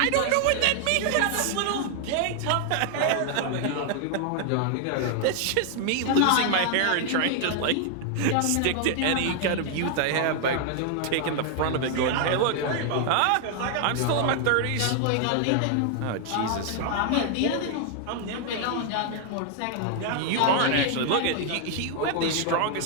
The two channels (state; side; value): different; both; correlation 0.00